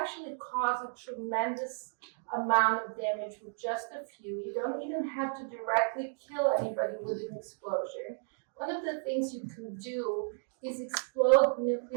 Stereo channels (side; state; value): left; silent; digital silence